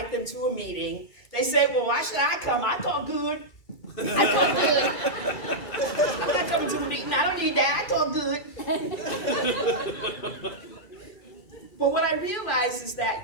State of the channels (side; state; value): right; late; 2.3 ms